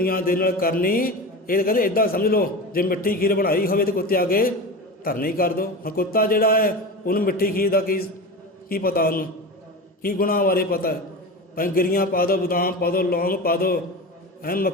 ਦੇ ਨਾਲ ਕਰਨੀ। ਇਹ ਕਹਿੰਦੇ ਇੱਦਾਂ ਸਮਝ ਲਓ, ਜੇ ਮਿੱਠੀ ਖੀਰ ਬਣਾਈ ਹੋਵੇ ਤਾਂ ਕੁੱਤੇ ਅੱਗੇ ਧਰਨੀ ਕਰ ਦਿਓ। ਹੁਣ ਕੁੱਤਾ ਜਿਹੜਾ ਹੈ, ਉਹਨੂੰ ਮਿੱਠੀ ਖੀਰ ਦਾ ਕੀ ਪਤਾ, ਉਹਨੂੰ ਕੀ ਗੁਣਾਂ ਬਾਰੇ ਪਤਾ ਹੈ। ਭਾਵੇਂ ਗਿਰੀਆਂ ਪਾ ਦਿਓ, ਬਦਾਮ ਪਾ ਦਿਓ, ਲੌਂਗ ਪਾ ਦਿਓ,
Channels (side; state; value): both; normal; correlation 0.27